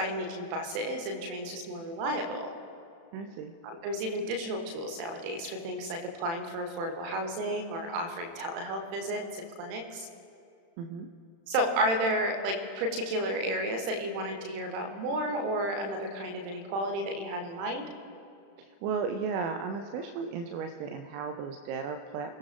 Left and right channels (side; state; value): left; late; 36 ms